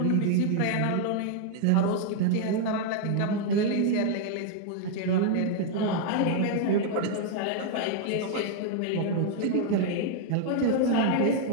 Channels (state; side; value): different; both; correlation 0.00